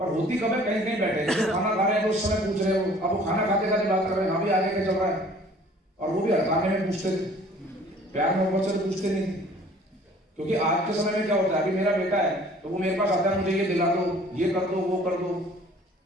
होती कब है? कहीं कहीं बैठे जो खाना खा रहे हैं तो उस समय पूछ रहे हो। अब वो खाना खाते खाते बात कर रहे हैं, हाँ भी आगे क्या चल रहा है, और वो भी हड़काने में पूछते थे, प्यार मोहब्बत से पूछते नहीं थे। क्योंकि आज के समय में क्या होता है, अभी मेरा बेटा है तो वो मेरे पास आता है, मुझे ये दिला दो, ये कर दो, वो कर दो।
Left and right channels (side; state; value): both; normal; correlation 0.52